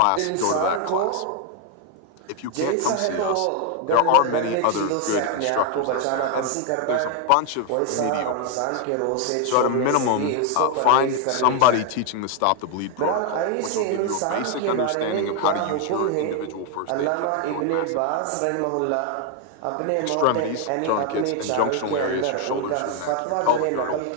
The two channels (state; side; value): different; both; correlation 0.01